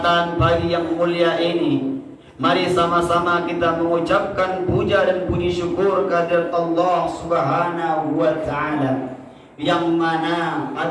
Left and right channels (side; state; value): both; identical; correlation 1.00